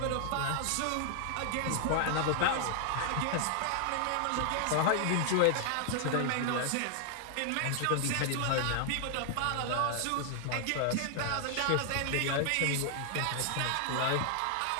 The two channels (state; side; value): different; both; correlation 0.00